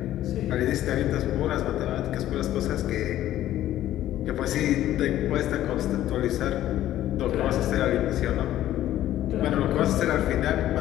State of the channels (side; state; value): right; quieter; 13.1 dB